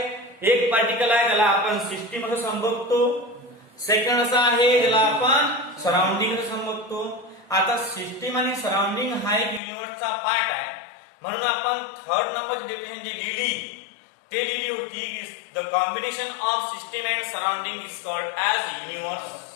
एक पार्टिकल आहे त्याला आपण सिस्टीम असं संबोधतो. सेकंड असा आहे ज्याला आपण सराउंडिंग समजतो. आता सिस्टीम आणि सराउंडिंग हा एक युनिव्हर्सचा पार्ट आहे, म्हणून आपण थर्ड नंबर डेफिनेशन जी लिहिली होती की the combination of system and surrounding is called as universe.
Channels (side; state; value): right; drops out; at 9.6 s